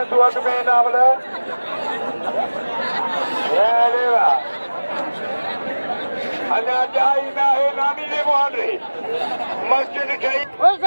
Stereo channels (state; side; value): inverted; both; correlation -1.00